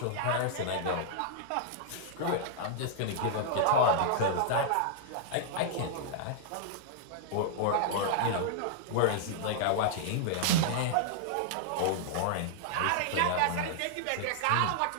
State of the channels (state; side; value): different; both; correlation -0.01